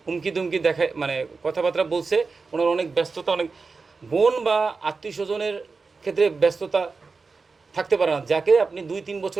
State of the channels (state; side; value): quieter; left; 4.4 dB